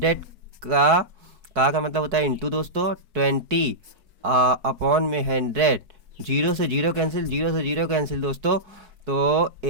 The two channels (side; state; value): left; late; 4.6 ms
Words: का मतलब होता है इंटू दोस्तों 20 अपॉन में 100। 0 से 0 कैंसिल, 0 से 0 कैंसिल दोस्तों। तो